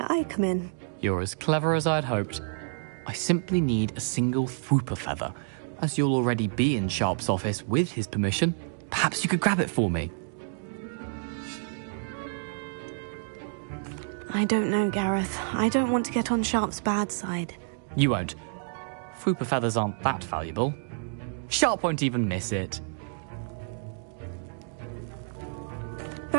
I come in. You're as clever as I'd hoped. I simply need a single Fwooper feather. As you'll already be in Sharp's office with his permission, perhaps you could grab it for me. I don't know, Gareth. I don't want to get on Sharp's bad side. You won't. Fwooper feathers aren't that valuable. Sharp won't even miss it.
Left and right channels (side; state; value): left; silent; digital silence